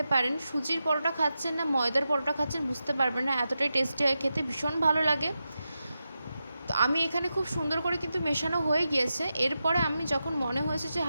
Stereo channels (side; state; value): both; inverted; correlation -0.90